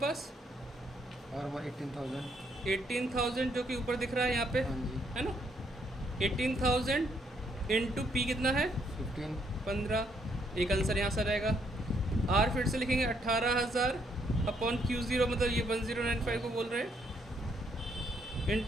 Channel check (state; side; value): normal; both; correlation 0.72